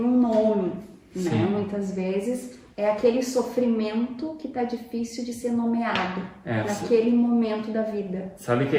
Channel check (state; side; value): identical; both; correlation 1.00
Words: um nome, né? Muitas vezes é aquele sofrimento que está difícil de ser nomeado naquele momento da vida. Sabe que